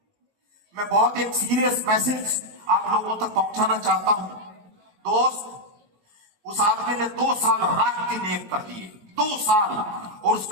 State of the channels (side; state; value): left; late; 19 ms